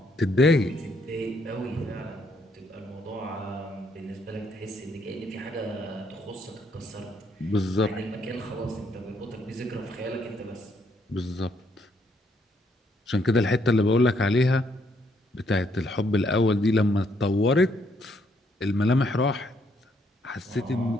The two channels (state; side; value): normal; both; correlation 0.72